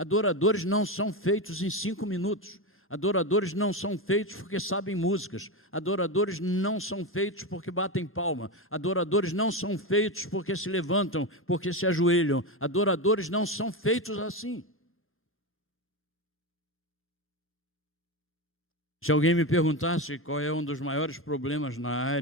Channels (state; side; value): normal; both; correlation 0.15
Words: não são feitos em 5 minutos. Adoradores não são feitos porque sabem músicas. Adoradores não são feitos porque batem palma. Adoradores não são feitos porque se levantam, porque se ajoelham. Adoradores não são feitos assim. Se alguém me perguntasse qual é um dos maiores problemas na